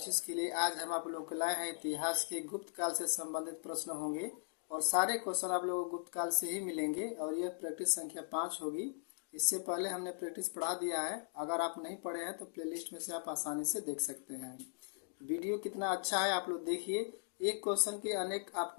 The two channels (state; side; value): silent; right; digital silence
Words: के लिए आज हम आप लोगों को लाए हैं इतिहास के गुप्त काल से संबंधित प्रश्न होंगे और सारे क्वेश्चन आप लोगों को गुप्त काल से ही मिलेंगे और यह प्रैक्टिस संख्या 5 होगी। इससे पहले हमने प्रैक्टिस पढ़ा दिया है, अगर आप नहीं पढ़े हैं तो प्लेलिस्ट में से आप आसानी से देख सकते हैं। वीडियो कितना अच्छा है आप लोग देखिए। एक क्वेश्चन के अनेक